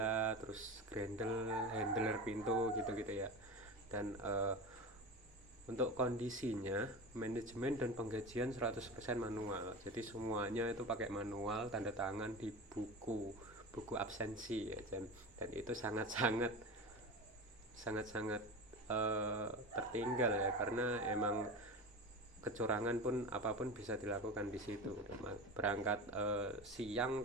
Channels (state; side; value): normal; both; correlation 0.28